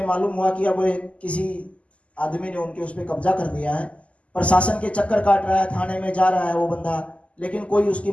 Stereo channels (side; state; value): right; late; 0.062 ms